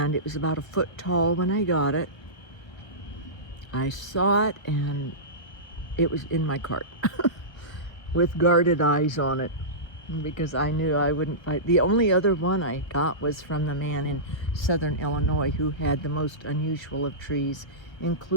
it was about a foot tall when I got it. I saw it, and it was in my cart with guarded eyes on it, because I knew I wouldn't fight. The only other one I got was from the man in southern Illinois who had the most unusual of trees,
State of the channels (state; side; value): late; right; 1.2 ms